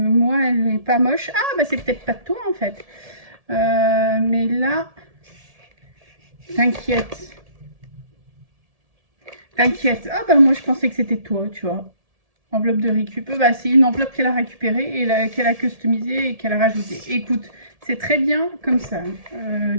elle n'est pas moche. Ah, bah c'est peut-être pas de toi en fait. Mais là, t'inquiète. T'inquiète. Ah bah moi je pensais que c'était toi, tu vois. Enveloppe de récup. Bah, c'est une enveloppe qu'elle a récupérée et qu'elle a customisée et qu'elle a rajoutée. Écoute, c'est très bien comme ça.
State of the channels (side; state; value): left; late; 1.7 ms